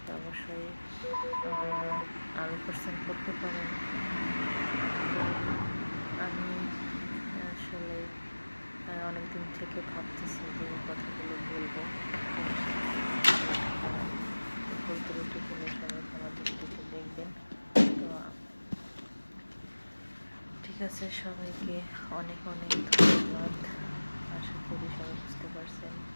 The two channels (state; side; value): inverted; both; correlation -1.00